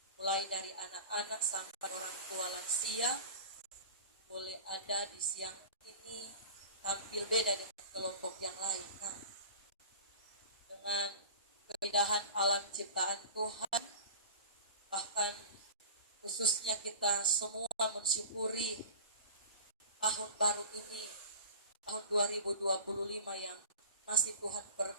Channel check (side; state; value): both; inverted; correlation -0.35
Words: Mulai dari anak-anak sampai orang tua lansia. Boleh ada di siang ini tampil beda dengan kelompok yang lain. Nah, dengan keindahan alam ciptaan Tuhan, bahkan khususnya kita semua mensyukuri tahun baru ini, tahun 2025 yang masih Tuhan